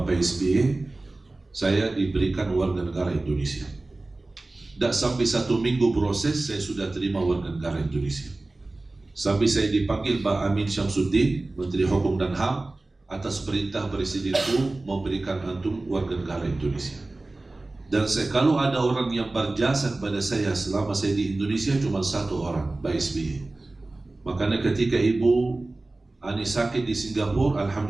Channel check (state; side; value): quieter; left; 3.0 dB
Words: SBY. Saya diberikan warga negara Indonesia. Tak sampai 1 minggu proses, saya sudah terima warga negara Indonesia. Sampai saya dipanggil Pak Amin Syamsuddin, Menteri Hukum dan HAM, atas perintah Presidenku memberikan antum warga negara Indonesia. Dan kalau ada orang yang berjasa kepada saya selama saya di Indonesia, cuma 1 orang, Pak SBY. Makanya ketika Ibu Ani sakit di Singapura,